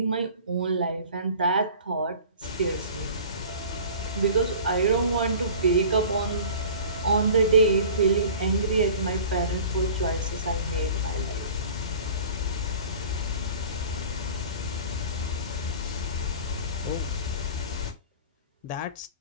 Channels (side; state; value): both; inverted; correlation -0.42